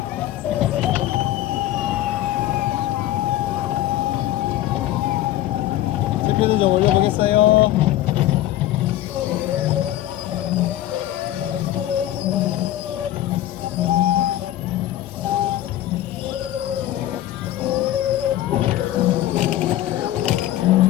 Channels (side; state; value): right; quieter; 13.8 dB